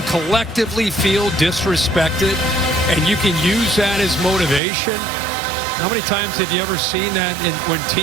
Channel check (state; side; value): drops out; left; at 4.6 s